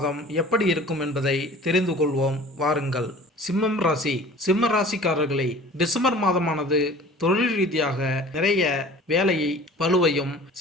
எப்படி இருக்கும் என்பதை தெரிந்து கொள்வோம் வாருங்கள். சிம்மம் ராசி. சிம்ம ராசிக்காரர்களை டிசம்பர் மாதமானது தொழில் ரீதியாக நிறைய வேலையை பளுவையும்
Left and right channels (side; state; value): both; normal; correlation 0.45